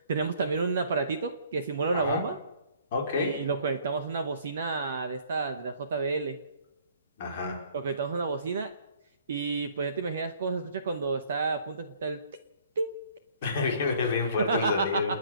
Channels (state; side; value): inverted; both; correlation -0.57